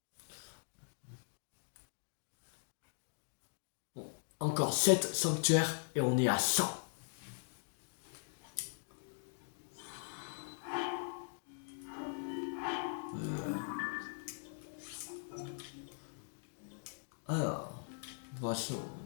Bon, encore 7 sanctuaires et on est à 100. Alors, on va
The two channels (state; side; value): silent; right; digital silence